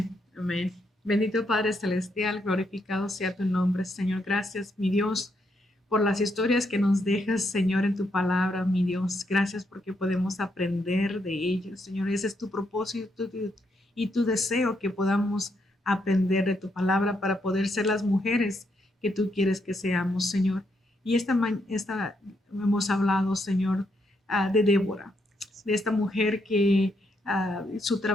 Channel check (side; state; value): both; normal; correlation 0.78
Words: amén. Bendito Padre Celestial, glorificado sea tu nombre, Señor. Gracias, mi Dios, por las historias que nos dejas, Señor, en tu palabra, mi Dios. Gracias porque podemos aprender de ellas, Señor. Ese es tu propósito y tu deseo que podamos aprender de tu palabra para poder ser las mujeres que tú quieres que seamos, Señor. Y esta hemos hablado, Señor, de Débora, de esta mujer que su